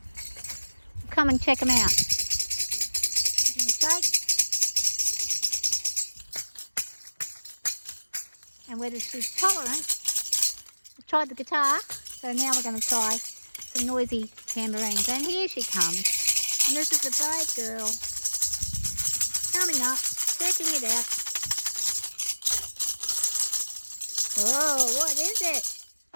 come and check them out. Give them a shake, and whether she's tolerant. I've tried the guitar, so now we're going to try some noisy tambourines. And here she comes, and this is a brave girl coming up, checking it out. Oh, what is it?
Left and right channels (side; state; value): both; inverted; correlation -1.00